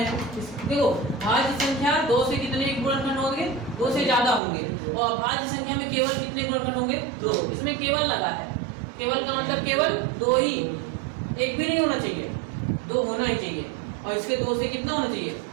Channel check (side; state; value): left; drops out; at 4.4 s